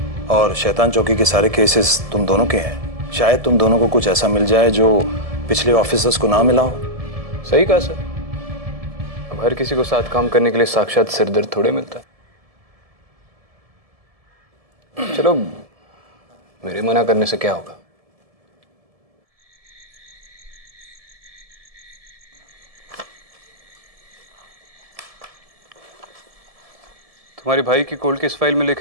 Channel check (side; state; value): left; late; 1.7 ms